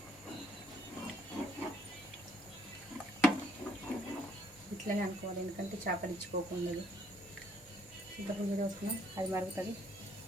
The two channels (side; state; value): both; normal; correlation 0.66